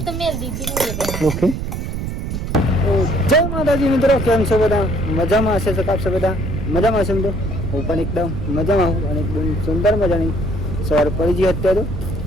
ઓકે. જય માતાજી મિત્રો, કેમ છો બધા? મજામાં હશે સકાપ છે બધા? મજામાં હશે મિત્રો? હું પણ એકદમ મજામાં હું અને એકદમ સુંદર મજાની સવાર પડી ગઈ અત્યારે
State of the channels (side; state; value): right; noise; rumble, 4 dB below the sound